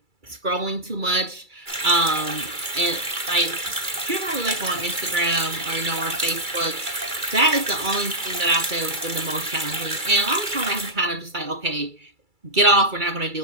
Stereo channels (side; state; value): left; late; 2.3 ms